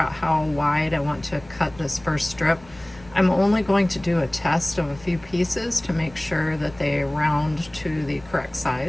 how wide I want to cut this first strip. I'm only going to do a test of a few pieces to make sure that they round to the correct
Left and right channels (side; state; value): left; noise; rumble, 23 dB below the sound